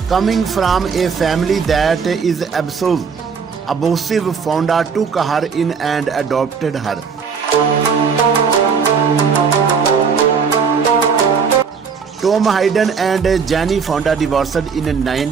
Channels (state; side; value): quieter; left; 6.0 dB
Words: Coming from a family that is abusive, Fonda took her in and adopted her. Tom Hayden and Јане Fonda divorced in